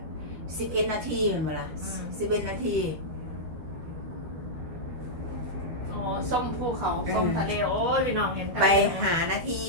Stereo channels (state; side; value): late; left; 12 ms